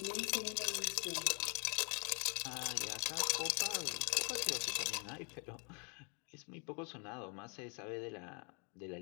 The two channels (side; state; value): right; quieter; 36.2 dB